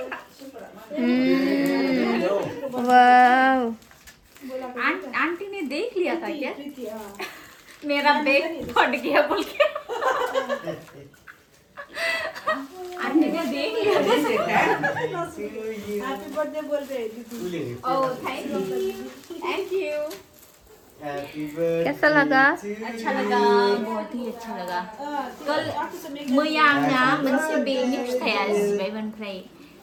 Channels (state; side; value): identical; both; correlation 1.00